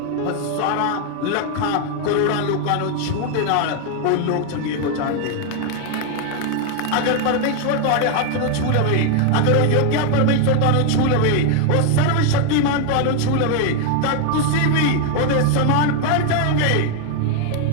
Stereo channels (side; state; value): both; different; correlation 0.00